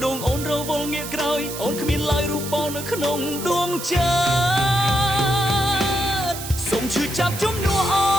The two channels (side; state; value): right; noise; hiss, 9 dB below the sound